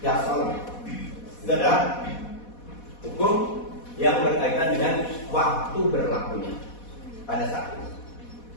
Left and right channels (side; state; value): right; late; 4.1 ms